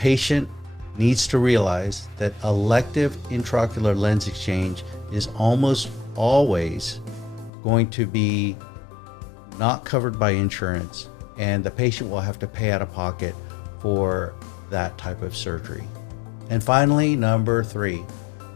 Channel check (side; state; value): right; drops out; at 7.5 s